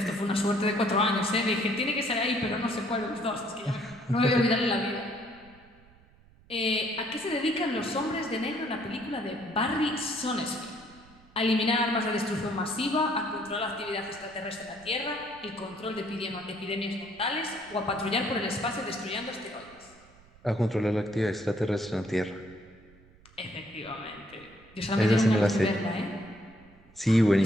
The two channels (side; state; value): right; noise; rumble, 26 dB below the sound